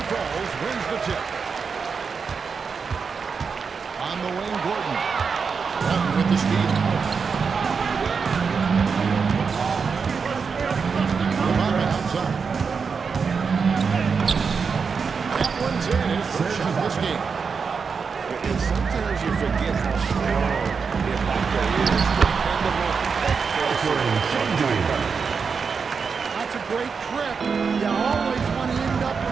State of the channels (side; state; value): left; quieter; 5.6 dB